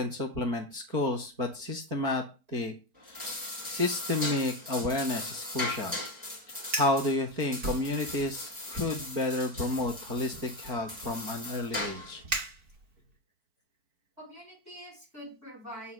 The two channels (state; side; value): late; left; 4.5 ms